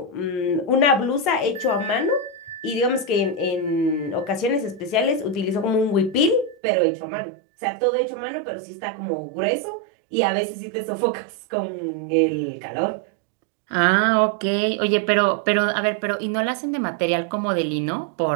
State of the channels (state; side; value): drops out; left; at 6.6 s